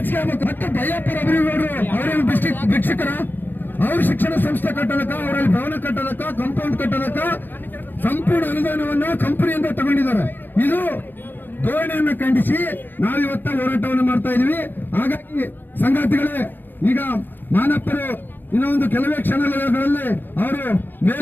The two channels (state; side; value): late; right; 0.093 ms